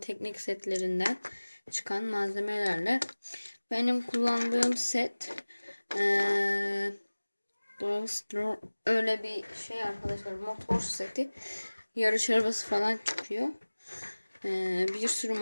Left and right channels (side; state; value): both; inverted; correlation -1.00